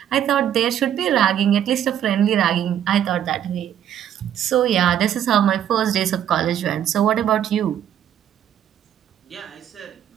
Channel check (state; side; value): quieter; left; 10.2 dB